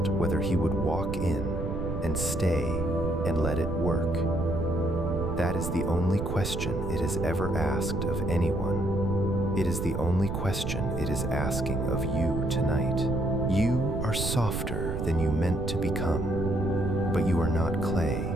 whether he would walk in and stay and let it work. That is the only question it has ever asked of anyone. It is the only question it is asking of you tonight. You are softer than you meant to become, but you are not clay.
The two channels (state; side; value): noise; right; rumble, 3 dB below the sound